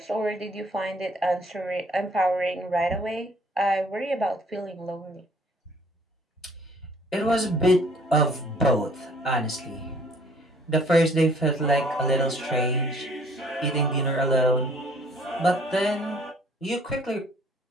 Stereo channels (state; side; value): normal; both; correlation 0.58